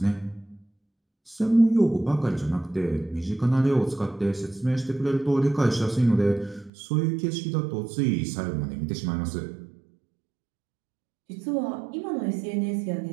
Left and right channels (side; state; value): left; drops out; at 6.7 s